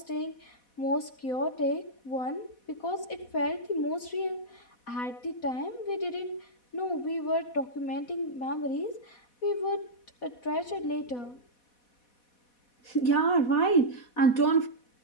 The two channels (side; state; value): right; late; 4.1 ms